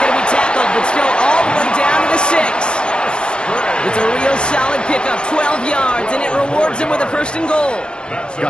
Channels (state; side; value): late; right; 0.052 ms